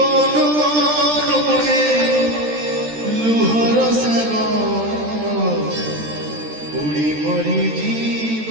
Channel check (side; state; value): left; late; 13 ms